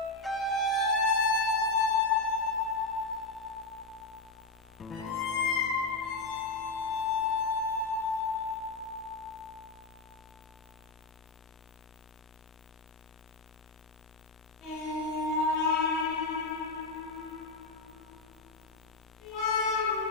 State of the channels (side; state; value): right; quieter; 3.4 dB